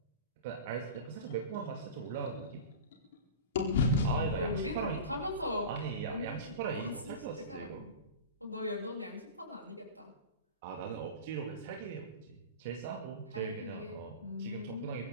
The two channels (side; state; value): both; inverted; correlation -0.30